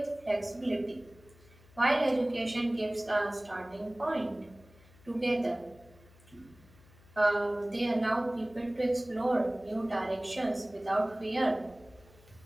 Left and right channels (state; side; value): noise; left; hum, 26 dB below the sound